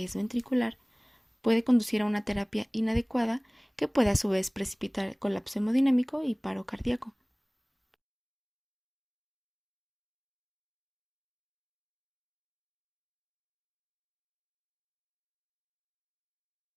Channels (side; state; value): both; identical; correlation 1.00